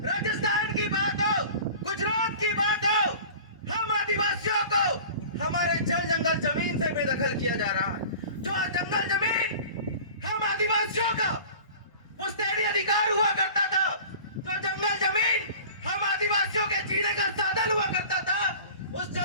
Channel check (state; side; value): inverted; both; correlation -0.41